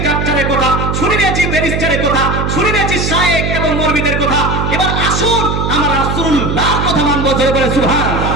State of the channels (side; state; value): right; noise; hum, 1 dB below the sound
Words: ডাক্তারের কথা, শুনে নিয়েছি ব্যারিস্টারের কথা, শুনে নিয়েছি শায়েখ এবং মরবিদের কথা। এবার আসুন আমরা রাসূলুল্লাহর কথা মানবো। জোরে বলে সুবহানাল্লাহ।